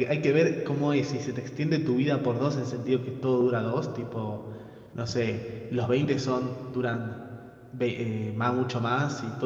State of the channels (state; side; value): identical; both; correlation 1.00